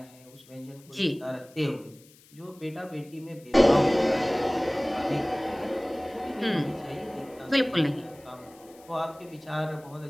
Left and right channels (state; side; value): noise; left; hiss, 26 dB below the sound